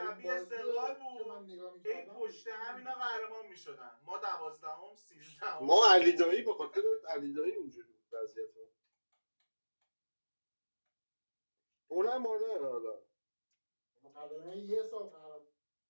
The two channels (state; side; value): inverted; both; correlation -1.00